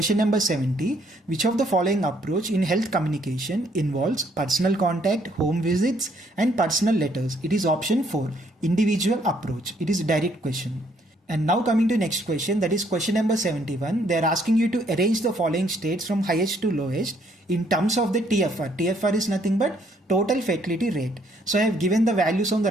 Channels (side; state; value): both; normal; correlation 0.67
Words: number 70. Which of the following approach in health communication involves personal contact, home visits and personal letters? It is option 4, individual approach. It is a direct question. And now coming to next question, that is question number 71. They are asking you to arrange the following states from highest to lowest in terms of the TFR. TFR is nothing but total fatality rate. So I have given the values on the